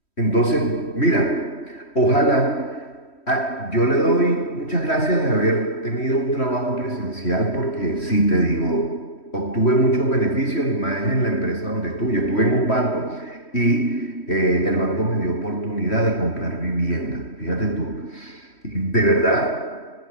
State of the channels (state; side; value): late; right; 3.1 ms